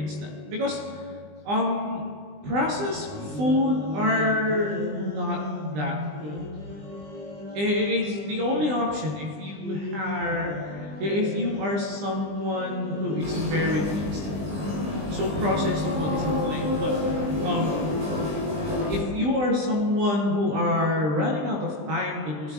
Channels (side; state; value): left; late; 20 ms